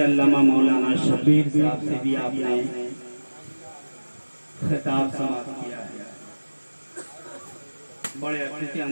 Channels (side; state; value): both; inverted; correlation -1.00